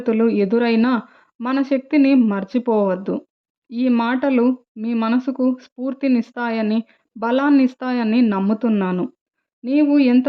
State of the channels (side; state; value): both; identical; correlation 1.00